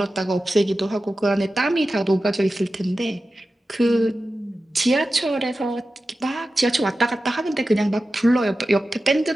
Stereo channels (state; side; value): normal; both; correlation 0.93